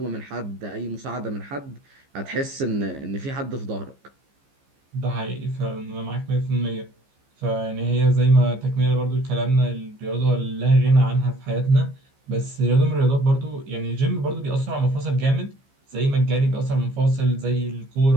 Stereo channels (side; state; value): left; late; 15 ms